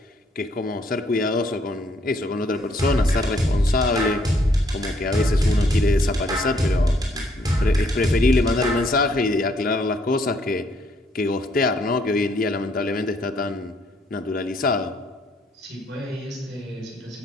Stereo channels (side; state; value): both; normal; correlation 0.68